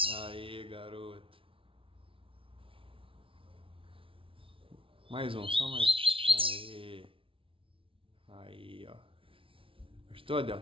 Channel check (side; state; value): left; late; 0.25 ms